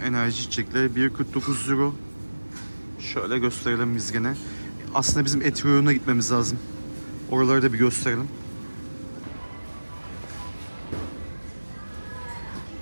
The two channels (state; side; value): inverted; both; correlation -1.00